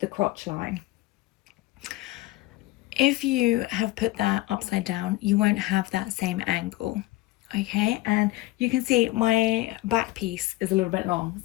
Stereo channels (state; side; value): quieter; right; 18.4 dB